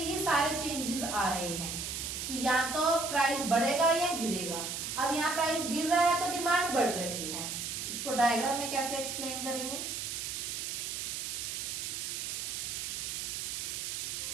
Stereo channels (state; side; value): noise; right; hiss, 4 dB below the sound